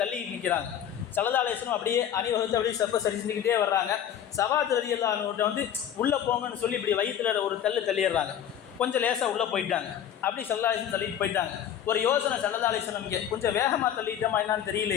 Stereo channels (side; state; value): right; quieter; 9.7 dB